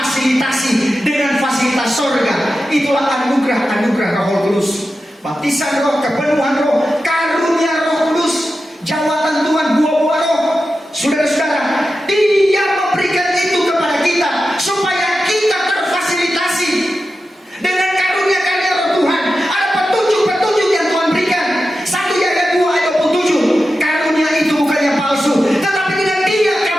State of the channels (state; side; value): normal; both; correlation 0.91